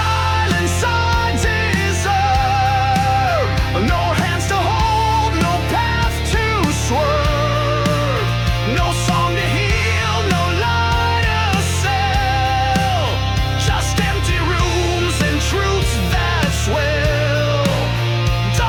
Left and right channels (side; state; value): both; identical; correlation 1.00